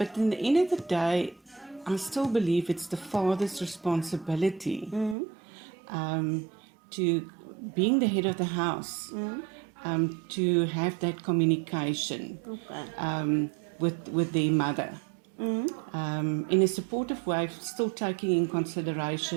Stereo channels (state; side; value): drops out; left; at 5.2 s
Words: in the end of the day, I still believe it's the father's responsibility to being the head of the house, to have that communication with their mother. In a supportive way, still taking in